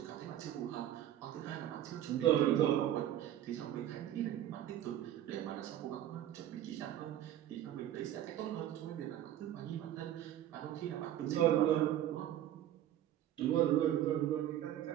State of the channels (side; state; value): left; quieter; 11.9 dB